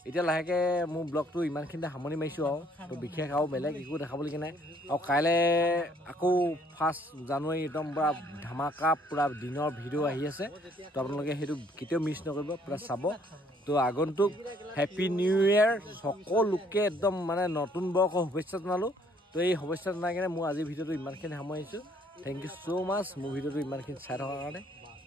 এতিয়া লাহেকৈ মোৰ ব্লগটো ইমানখিনিতে সামৰণি মাৰিছোঁ আৰু তো বিশেষ আৰু বেলেগ একো দেখাবলগীয়া নাই আৰু কাইলৈ আকৌ 1 জানুৱাৰী একদম পূৰা ধামাকা পূৰা দিনৰ ভিডিঅ' আহি আছে তো আপোনালোকে সেইটো কেতিয়াও মিছ নকৰিব পূৰা চাব তো আগন্তুক হেপী নিউ ইয়েৰ সকলোকে একদম মানে নতুন বৰ্ষৰ শুভেচ্ছা জনালোঁ তো এই শুভেচ্ছা জনাই কিনে মোৰ আজিৰ ভিডিঅ'টো ইমানখিনি সামৰিছোঁ থেংক ইউ ছ' মাছ মোৰ ভিডিঅ'টো ইমানখিনি চাই থকাৰ কাৰণে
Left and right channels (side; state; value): both; normal; correlation 0.63